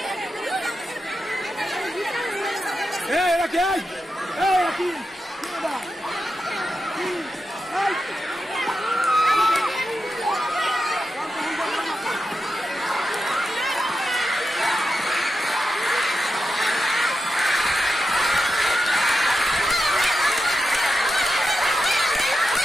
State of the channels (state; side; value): normal; both; correlation 0.89